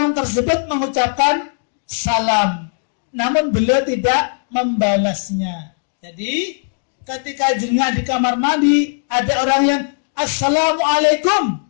tersebut mengucapkan salam, namun beliau tidak membalasnya. Jadi ketika jengah di kamar mandi ada orang yang assalamualaikum,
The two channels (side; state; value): right; silent; digital silence